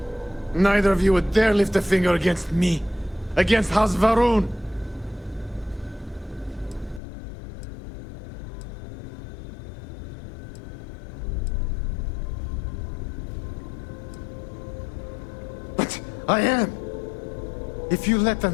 Neither of you would dare lift a finger against me. Against House Varun. But I am. If you let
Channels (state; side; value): drops out; right; at 7.0 s